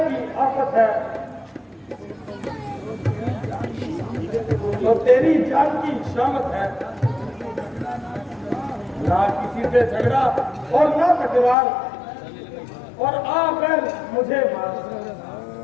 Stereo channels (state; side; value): drops out; right; at 11.6 s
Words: आफत है तो तेरी जान की शामत है। ना किसी से झगड़ा और ना तकरार और आ बैल मुझे मार